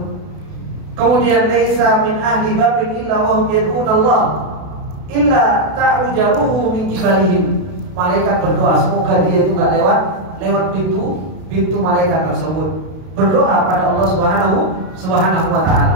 Kemudian laisa min ahli babin illa wa hum yad'una Allah illa ta'rujaruhu min kibalihim. Malaikat berdoa semoga dia itu enggak lewat pintu malaikat tersebut. Berdoa pada Allah Subhanahu wa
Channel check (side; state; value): left; late; 32 ms